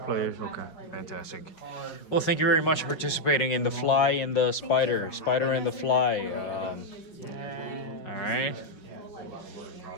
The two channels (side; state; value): right; late; 5.4 ms